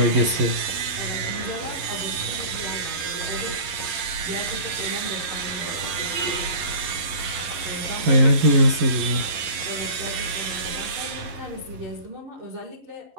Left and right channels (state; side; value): late; left; 11 ms